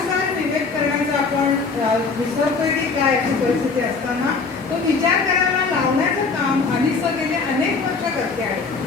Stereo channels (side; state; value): right; quieter; 4.5 dB